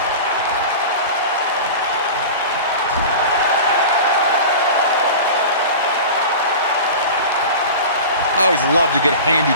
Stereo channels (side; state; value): both; inverted; correlation -0.32